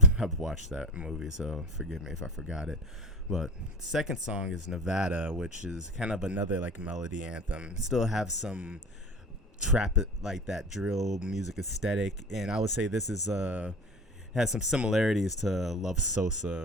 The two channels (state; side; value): normal; both; correlation 0.31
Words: watched that movie, so forgive me if I forgot it. But second song is Nevada, which is kind of another like melody anthem. Still have some trap like that drill music aesthetic, and I would say this is has some similarities to Love